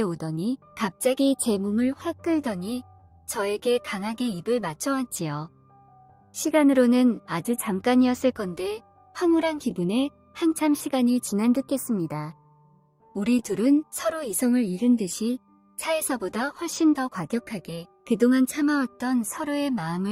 오더니 갑자기 제 몸을 확 끌더니 저에게 강하게 입을 맞춰왔지요. 시간으로는 아주 잠깐이었을 건데 황홀한 기분에 한참 시간이 지난 듯했습니다. 우리 둘은 서로 이성을 잃은 듯이 차에서보다 훨씬 더 과격하게 그동안 참아왔던 서로의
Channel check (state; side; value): identical; both; correlation 1.00